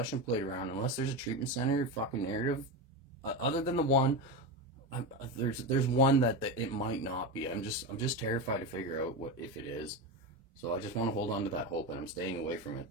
plate around, unless there's a treatment center fucking narrative. Other than the one, there's one that it might not be. I'm just terrified to figure out what if it is. So I just want to hold on to that hope, and I'm staying away from it.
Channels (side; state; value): both; normal; correlation 0.18